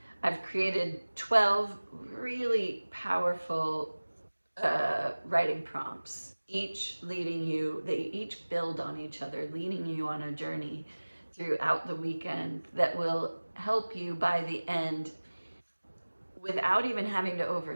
I've created 12 really powerful writing prompts, each leading you, they each build on each other, leading you on a journey throughout the weekend that will help you by the end without even having to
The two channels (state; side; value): inverted; both; correlation -1.00